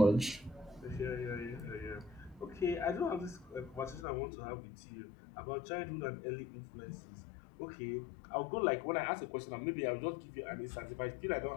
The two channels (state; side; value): drops out; right; at 4.0 s